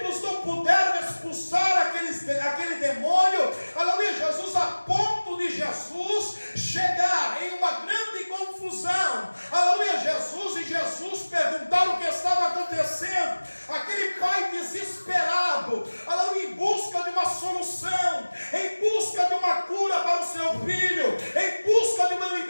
não puderam expulsar aquele demônio, aleluia, Jesus, a ponto de Jesus chegar em uma grande confusão, aleluia, Jesus perguntar o que estava acontecendo. Aquele pai desesperado, aleluia, em busca de uma solução, em busca de uma cura para o seu filho, em busca de uma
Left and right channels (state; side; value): inverted; both; correlation -1.00